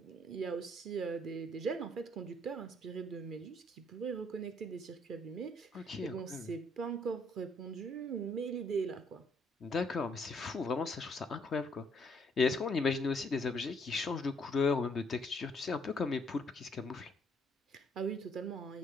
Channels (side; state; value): both; normal; correlation 0.67